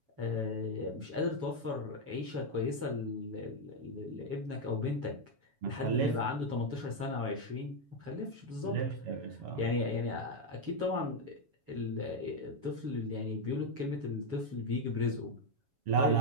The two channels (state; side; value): late; left; 7.2 ms